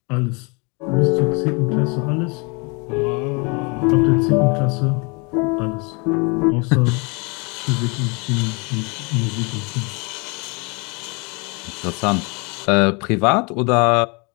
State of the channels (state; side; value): quieter; right; 31.5 dB